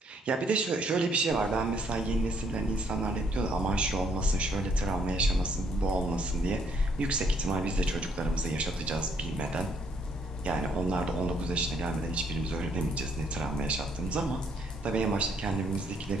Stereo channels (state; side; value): normal; both; correlation 0.68